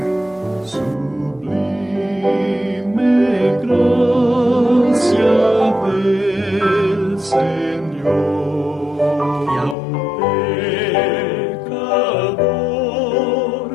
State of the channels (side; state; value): right; drops out; at 9.8 s